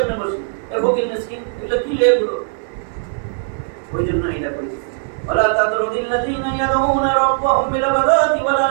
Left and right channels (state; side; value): silent; left; digital silence